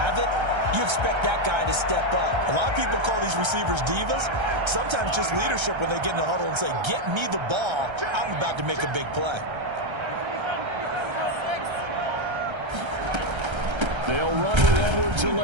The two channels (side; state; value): left; late; 1.3 ms